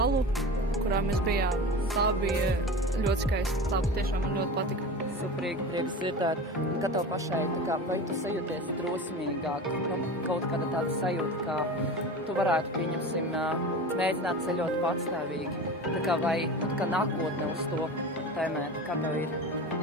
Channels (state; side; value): normal; both; correlation 0.31